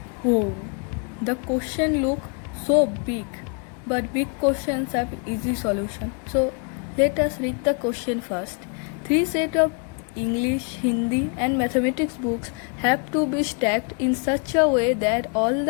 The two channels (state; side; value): quieter; right; 36.3 dB